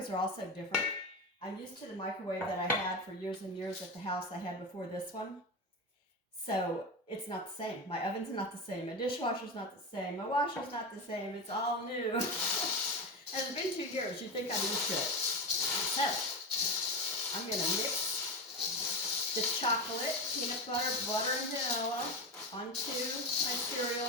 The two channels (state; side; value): normal; both; correlation 0.19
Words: are also different. I'm used to the microwave that I had for years and years at the house I had before this one. So it's not the same. My oven's not the same. My dishwasher's not the same. My washer's not the same. It's all new. And it's been 2 years. You'd think I'm used to it. So I'm going to mix the chocolate, peanut butter, butter, and vanilla onto my